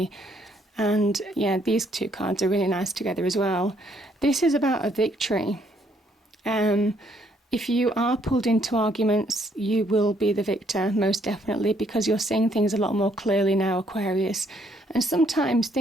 And yeah, these two cards are really nice together as well. This is about a victory. If you are pulled into arguments, you will be the victor, most definitely, because you're seeing things a lot more clearly now, Aquarius. And sometimes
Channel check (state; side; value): normal; both; correlation 0.69